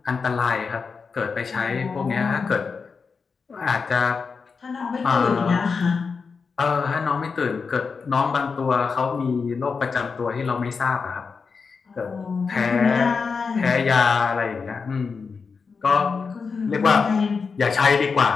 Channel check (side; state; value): right; quieter; 5.2 dB